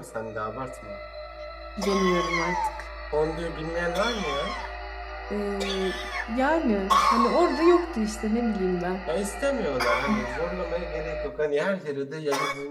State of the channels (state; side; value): identical; both; correlation 1.00